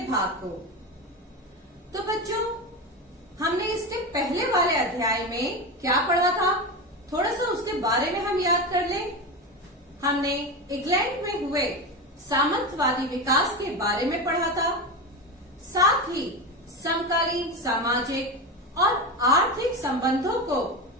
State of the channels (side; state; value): both; normal; correlation 0.20